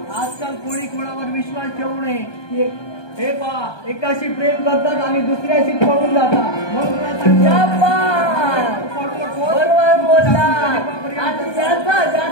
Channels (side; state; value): right; late; 1.2 ms